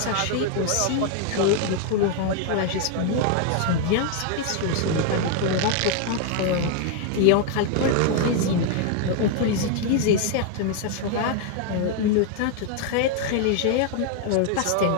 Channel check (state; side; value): different; both; correlation 0.00